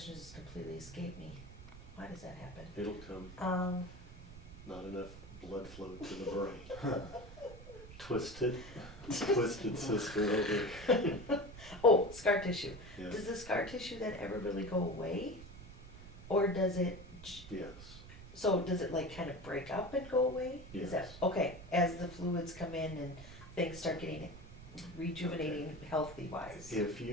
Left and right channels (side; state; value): right; noise; rumble, 15 dB below the sound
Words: just completely escaped me. Why does that happen? It'll come. Not enough blood flow to the brain. Twisted sister over. Oh, scar tissue. Yeah. Does the scar tissue then ever really go away? Or does it, Yes. so does it like kind of break up and go away? Is that, Yes. okay, as the fluids come in and things start getting rejuvenating healthy wise? If